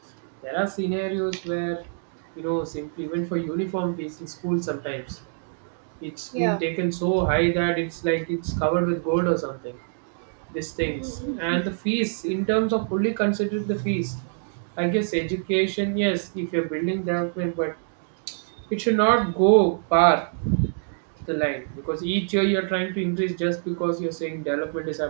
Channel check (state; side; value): silent; left; digital silence